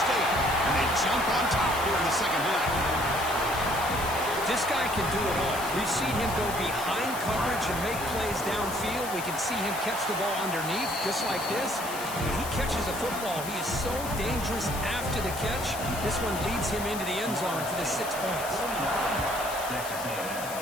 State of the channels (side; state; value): left; noise; hiss, 10 dB below the sound